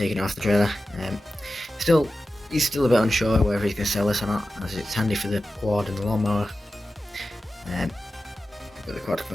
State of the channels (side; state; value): both; normal; correlation 0.93